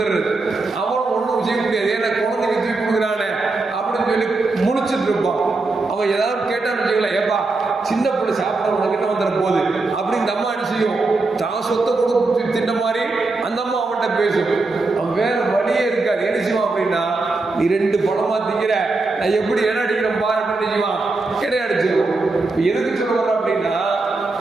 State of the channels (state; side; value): quieter; left; 3.5 dB